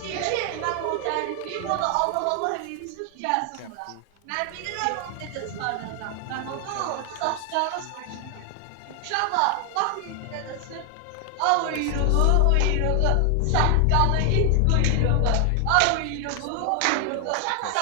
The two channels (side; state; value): both; different; correlation 0.00